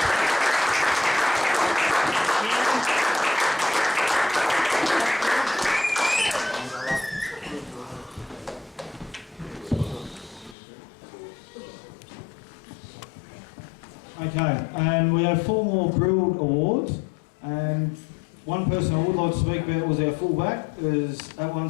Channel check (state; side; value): drops out; right; at 10.6 s